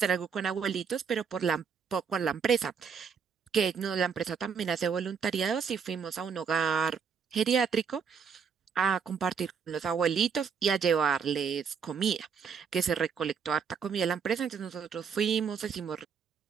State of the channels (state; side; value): quieter; left; 6.4 dB